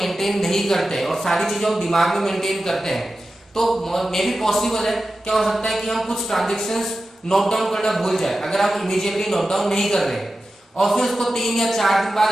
नहीं करते और सारी चीजें हम दिमाग में मेंटेन करते हैं तो मे भी पॉसिबल है, क्या हो सकता है कि हम कुछ ट्रांजैक्शंस नोट डाउन करना भूल जाए. अगर आप इमीडिएटली नोट डाउन नहीं कर रहे और फिर उसको 3 या 4 दिन बाद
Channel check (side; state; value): both; normal; correlation 0.93